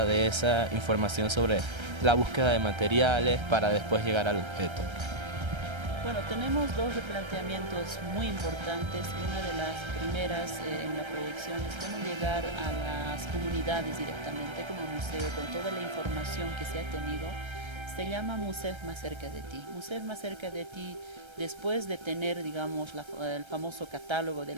de esa información sobre la búsqueda de materiales para después llegar al objeto? Bueno, tenemos dos replanteamientos muy importantes. Una de las primeras en la proyección es cómo llegar a las comunidades directamente como museo con toda la información que se ha tenido. Se llama Museo más cerca de ti. Museo más cerca de ti, después de tener, digamos, el famoso catálogo de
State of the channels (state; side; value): late; left; 1.3 ms